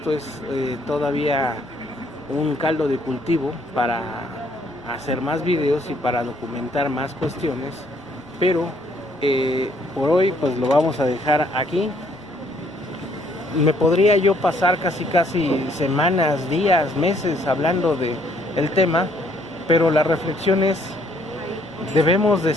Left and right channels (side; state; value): left; noise; rumble, 29 dB below the sound